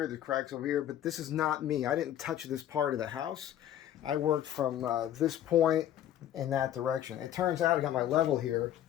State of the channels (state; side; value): quieter; right; 11.4 dB